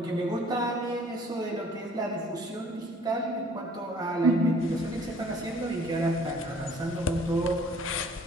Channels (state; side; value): normal; both; correlation 0.55